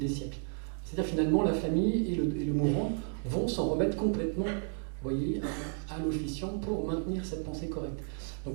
siècles. C'est-à-dire finalement, la famille et le mourant vont s'en remettre complètement, vous voyez, à l'officiant pour maintenir cette pensée correcte. Donc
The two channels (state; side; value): silent; left; 56 dB below the other